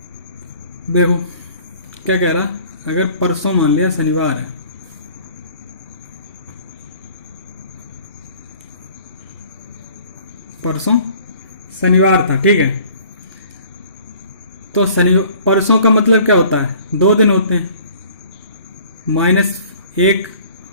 देखो क्या कह रहा, अगर परसों मान लिया शनिवार है, परसों शनिवार था। ठीक है, तो परसों का मतलब क्या होता है, 2 दिन होते हैं, -1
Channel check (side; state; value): both; inverted; correlation -0.52